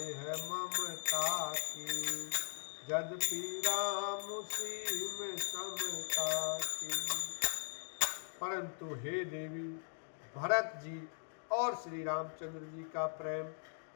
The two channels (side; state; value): right; silent; digital silence